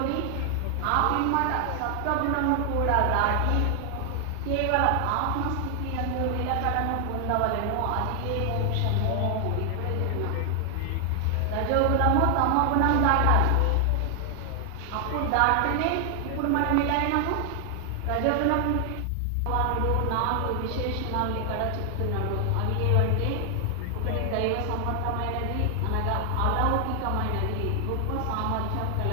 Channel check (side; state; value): both; different; correlation 0.00